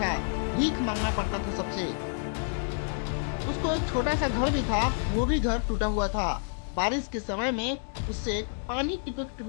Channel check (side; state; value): right; silent; digital silence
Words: भीख मांगना पड़ता था सबसे। उसको एक छोटा सा घर भी था, वो भी घर टूटा हुआ था। बारिश के समय में उससे पानी टिपक